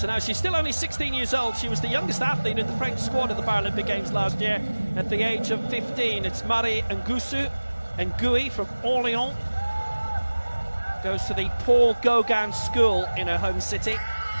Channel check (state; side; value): inverted; both; correlation -1.00